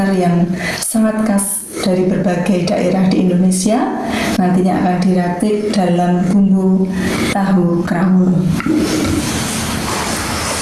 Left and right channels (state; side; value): identical; both; correlation 1.00